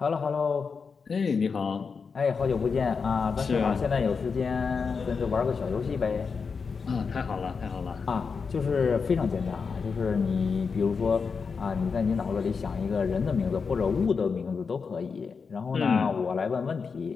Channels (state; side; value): quieter; right; 5.4 dB